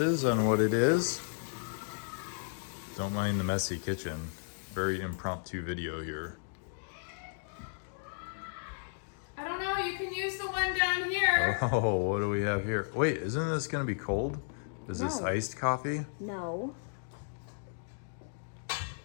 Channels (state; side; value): silent; right; digital silence